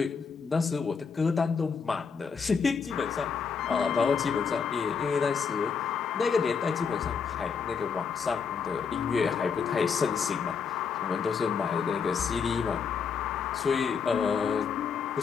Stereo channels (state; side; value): quieter; right; 6.0 dB